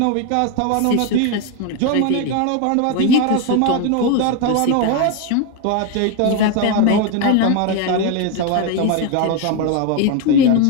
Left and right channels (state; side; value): different; both; correlation 0.02